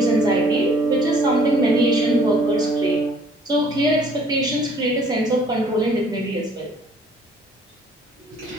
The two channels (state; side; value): normal; both; correlation 0.58